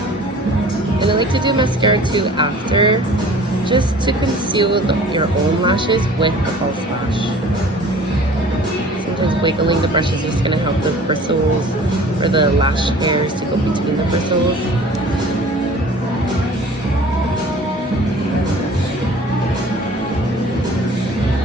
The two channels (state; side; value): normal; both; correlation 0.47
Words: And I like to do mascara too after, just to conceal your own lashes with a false lash. So I'm because wiggling the brush is just gonna help the bristles or the lash hairs to go between the bristles.